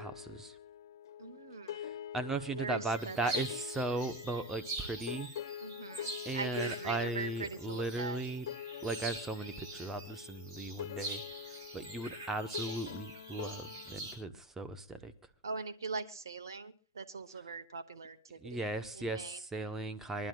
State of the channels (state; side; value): normal; both; correlation 0.24